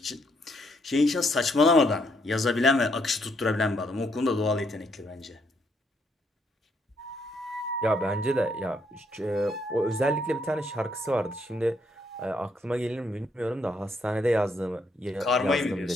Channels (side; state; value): both; normal; correlation 0.73